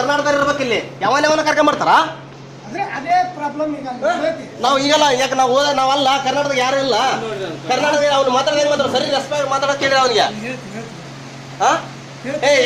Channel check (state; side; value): identical; both; correlation 1.00